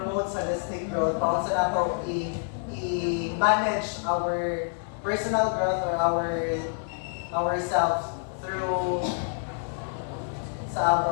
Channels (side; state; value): right; silent; 60 dB below the other